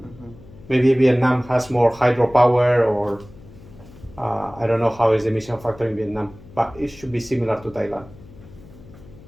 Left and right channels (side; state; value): left; noise; hum, 21 dB below the sound